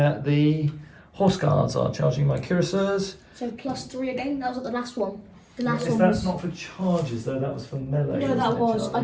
the horse guards are charging my cuirassiers. So +3 again. That was at the last one. The last one That's was. not for charges though. That was for melee. No, wasn't that it, was. Charlie?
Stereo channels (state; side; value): identical; both; correlation 1.00